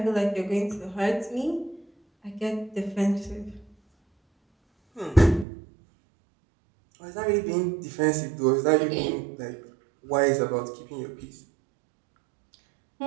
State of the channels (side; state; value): left; drops out; at 5.5 s